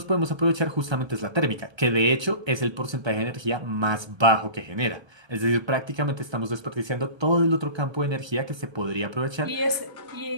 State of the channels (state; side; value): late; left; 1.3 ms